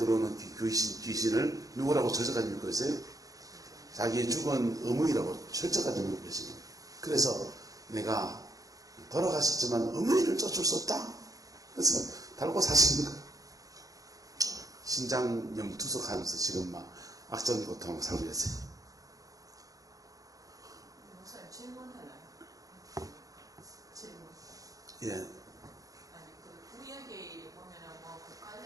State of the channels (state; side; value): late; left; 0.17 ms